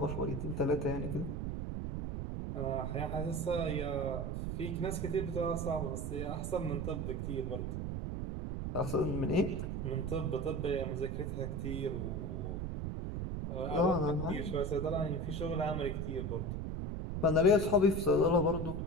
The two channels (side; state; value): right; noise; rumble, 3 dB below the sound